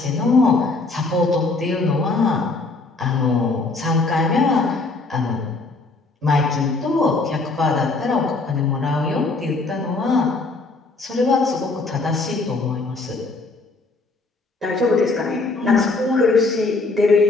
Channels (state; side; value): quieter; right; 3.5 dB